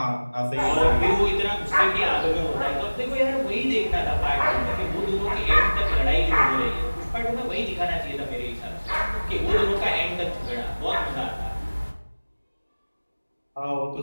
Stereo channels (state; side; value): inverted; both; correlation -1.00